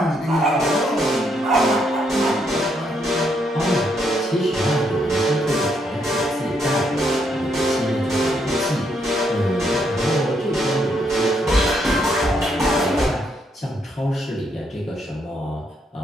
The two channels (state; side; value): normal; both; correlation 0.75